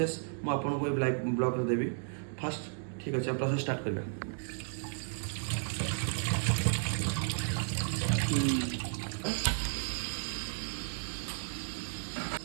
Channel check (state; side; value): silent; left; digital silence